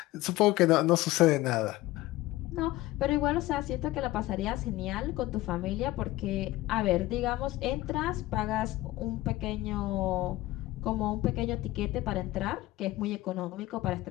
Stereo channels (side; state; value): right; quieter; 17.3 dB